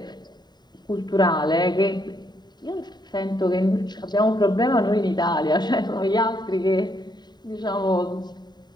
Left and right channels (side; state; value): right; late; 0.20 ms